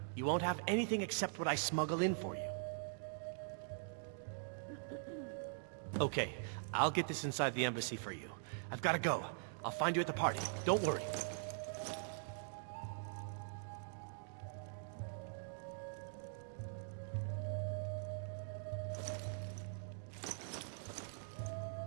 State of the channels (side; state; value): left; silent; digital silence